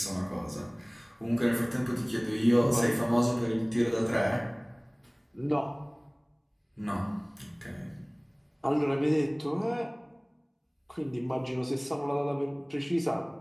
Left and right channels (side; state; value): both; identical; correlation 1.00